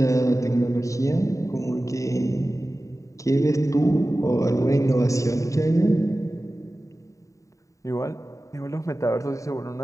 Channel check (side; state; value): right; late; 0.16 ms